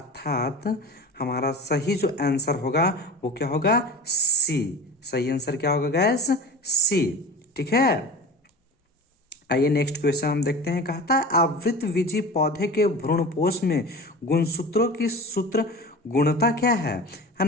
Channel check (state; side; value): normal; both; correlation 0.34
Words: हमारा सही जो आंसर होगा वो क्या होगा, सी। सही आंसर क्या होगा गैस, सी। ठीक है, आइए नेक्स्ट क्वेश्चन हम देखते हैं। कहता है आवृतबीजी पौधे के भ्रूणपोष में गुणसूत्रों की सूत्र गुणता क्या है